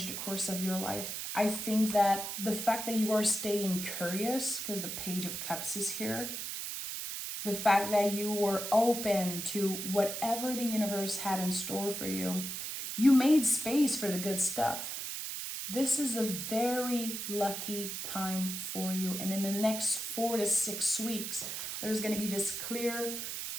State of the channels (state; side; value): noise; right; hiss, 5 dB below the sound